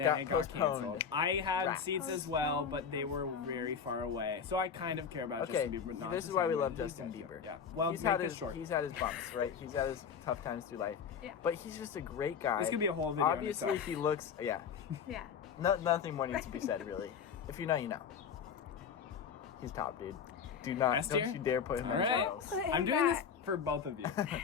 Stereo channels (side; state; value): right; quieter; 6.8 dB